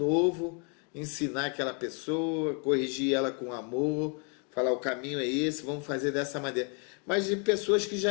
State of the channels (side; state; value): right; quieter; 37.7 dB